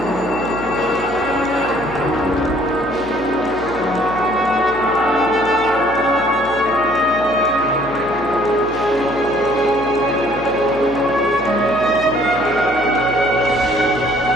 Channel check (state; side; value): noise; left; hum, 15 dB below the sound